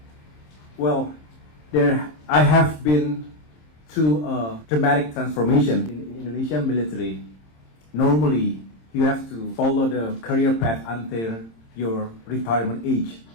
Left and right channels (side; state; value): right; late; 26 ms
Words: Well, I have been through a dramatic transformation in Indonesian military. Normally, you have to follow the career path until your retirement age.